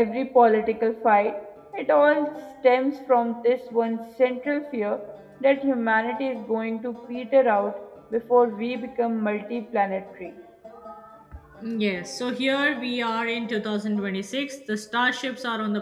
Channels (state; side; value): identical; both; correlation 1.00